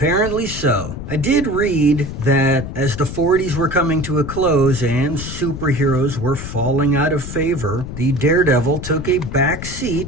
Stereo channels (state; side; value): noise; left; rumble, 8 dB below the sound